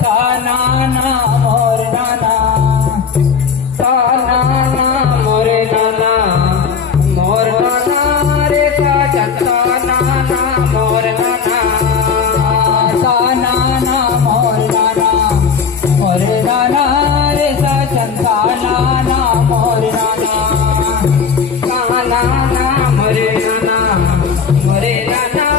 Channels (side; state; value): right; quieter; 6.1 dB